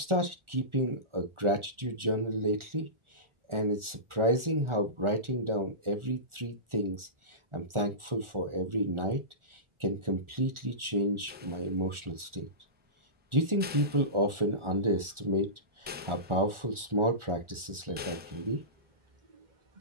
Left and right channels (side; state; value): left; late; 1.4 ms